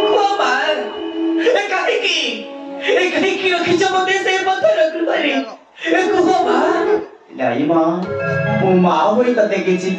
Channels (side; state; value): both; identical; correlation 1.00